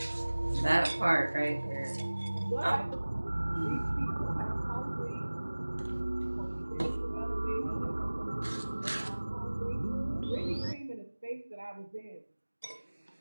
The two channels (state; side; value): inverted; both; correlation -1.00